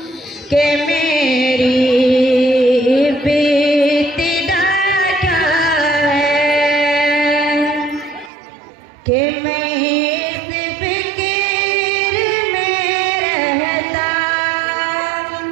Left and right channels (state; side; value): drops out; left; at 8.3 s